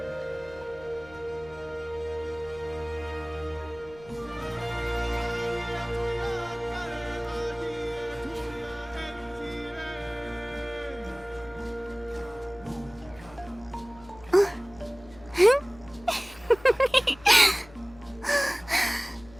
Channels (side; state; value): left; noise; hum, 21 dB below the sound